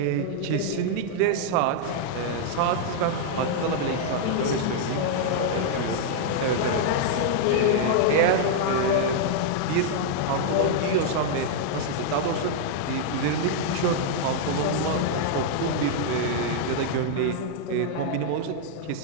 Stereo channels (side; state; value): both; different; correlation -0.01